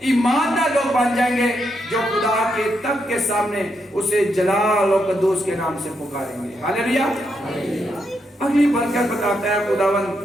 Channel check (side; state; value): both; normal; correlation 0.81